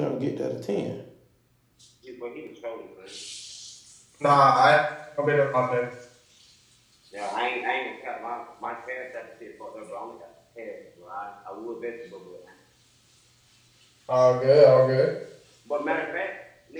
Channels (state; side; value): identical; both; correlation 1.00